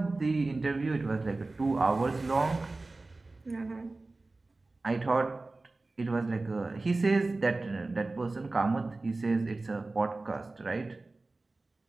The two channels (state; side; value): quieter; left; 3.3 dB